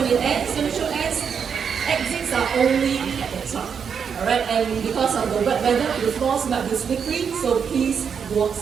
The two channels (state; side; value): quieter; left; 6.9 dB